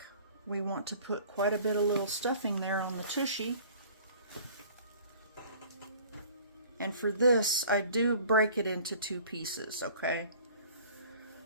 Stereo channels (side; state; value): both; inverted; correlation -0.49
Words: we want to put quite a bit of little stuffing there on the tushy. And for this, I do break it into two pieces, okay?